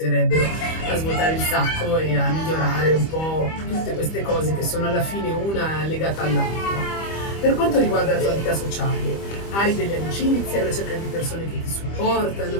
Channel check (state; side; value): late; right; 25 ms